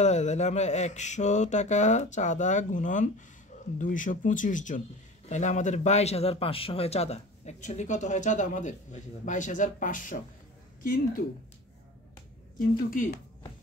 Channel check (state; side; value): normal; both; correlation 0.37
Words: দেয়। তাহলে আমরা 100 টাকা চাঁদা গুণন 225 জন, তাহলে আমাদের 22,500 হয় চাঁদা। অ্যাকচুয়ালি কত হয় চাঁদা আমাদের? 22,500।